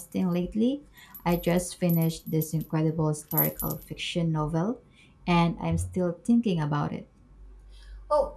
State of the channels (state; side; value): identical; both; correlation 1.00